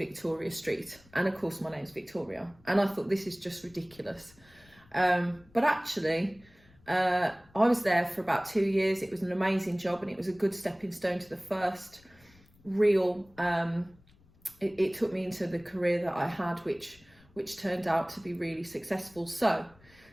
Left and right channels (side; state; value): left; noise; rumble, 28 dB below the sound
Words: Street. And of course my name's Victoria. And I thought, this is just ridiculous. But actually, I was there for about 2 years. It was an amazing job, and it was a good stepping stone to the first real, it took me into the career that I had, which turned out to be really successful. So